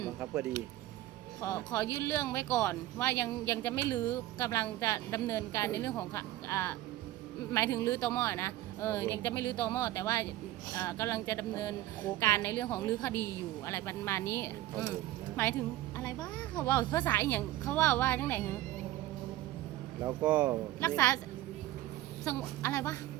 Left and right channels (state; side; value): quieter; left; 15.3 dB